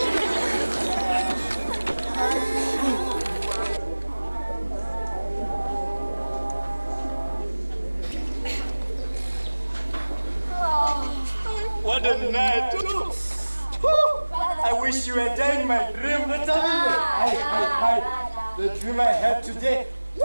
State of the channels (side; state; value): both; inverted; correlation -1.00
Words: night. I wish you were there in my dream. The dream I had today.